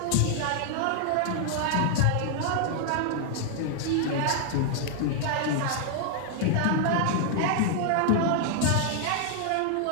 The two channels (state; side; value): different; both; correlation 0.00